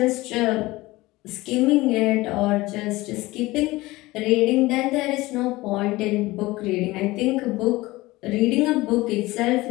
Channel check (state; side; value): quieter; right; 19.7 dB